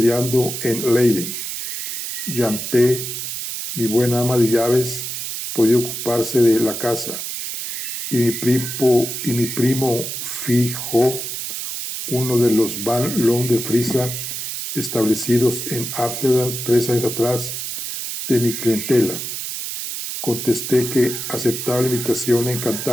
en Leiden. Yanté, mi buena ama de llaves, podía ocuparse de la casa, y mi primo Fijo, uno de los Van Loon de Frisia, establecidos en Ámsterdam 3 años atrás, de mi clientela. Contesté que aceptaba la invitación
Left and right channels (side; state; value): right; noise; hiss, 5 dB below the sound